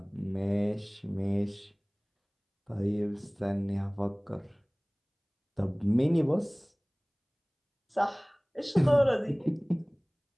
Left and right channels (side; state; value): both; identical; correlation 1.00